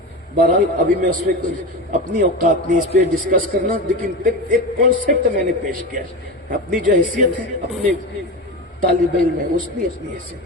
بہرحال ابھی میں اس پہ اپنی اوقات نہیں اس پہ ڈسکس کرنا، لیکن ایک کانسیپٹ میں نے پیش کیا. اپنی جو حیثیت ہے اپنے طالب علم ہے اس کی اپنی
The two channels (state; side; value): normal; both; correlation 0.23